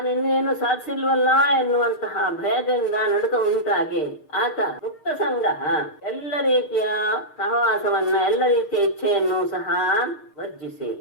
ಇನ್ನೇನು ಸಾಧಿಸಿಲ್ವಲ್ಲ ಎನ್ನುವಂತಹ ಭಯದಿಂದ ನಡುಕ ಉಂಟಾಗಿ ಆತ ಮುಕ್ತ ಸಂಘ ಎಲ್ಲ ರೀತಿಯ ಸಹವಾಸವನ್ನ ಎಲ್ಲ ರೀತಿಯ ಇಚ್ಛೆಯನ್ನು ಸಹ ವರ್ಜಿಸಿ,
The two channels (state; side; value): late; right; 6.6 ms